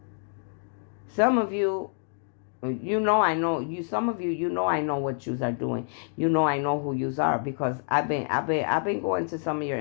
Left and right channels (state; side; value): silent; right; digital silence